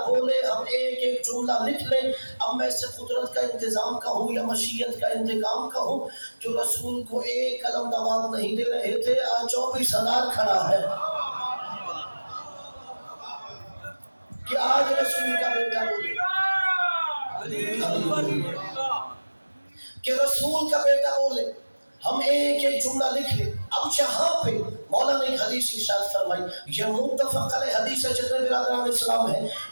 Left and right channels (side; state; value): both; inverted; correlation -1.00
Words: بولے ہم ایک ایک جملہ لکھ لیں. اب میں سے قدرت کا انتظام کہوں یا مشیت کا انتقام کہوں، جو رسول کو ایک قلم دوات نہیں دے رہے تھے آج 24,000 کھڑا ہے کہ آج رسول کا بیٹا بولے، کہ رسول کا بیٹا بولے ہم ایک ایک جملہ لکھ لیں. اب جہاں پہ مولانا ایک حدیث ارشاد فرمائی، یہ متفق علیہ حدیث ہے، جتنے برادران اسلام ہیں